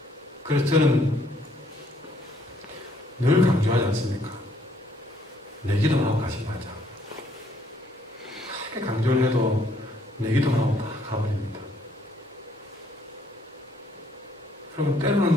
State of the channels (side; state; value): both; normal; correlation 0.66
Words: 그래서 저는 늘 강조하지 않습니까? 내 기도만 하고 가지 마자. 크게 강조를 해도 내 기도만 하고 다 가버립니다. 여러분,